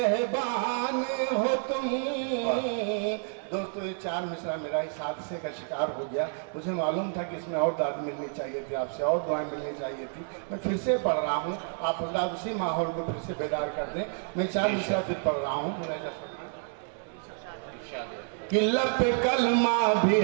हो तुम। दोस्तों ये 4 मिसरा मेरा इस हादसे का शिकार हो गया। मुझे मालूम था कि इसमें और दाद मिलनी चाहिए थी, आपसे और दुआएं मिलनी चाहिए थी। मैं फिर से पढ़ रहा हूँ, आप अल्लाह उसी माहौल को फिर से बेदार कर दें। मैं 4 मिसरा फिर पढ़ रहा हूँ। कि लब कलमा भी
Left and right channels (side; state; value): left; silent; 58 dB below the other